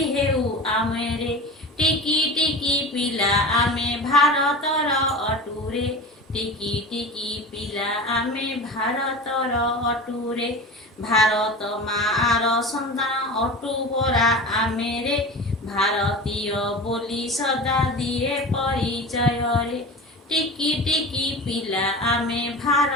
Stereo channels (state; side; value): normal; both; correlation 0.32